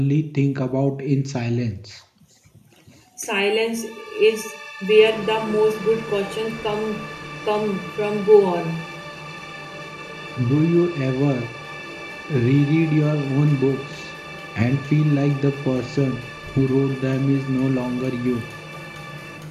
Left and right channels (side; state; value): both; identical; correlation 1.00